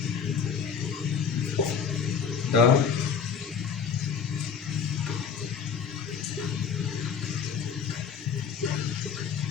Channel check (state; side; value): quieter; right; 6.6 dB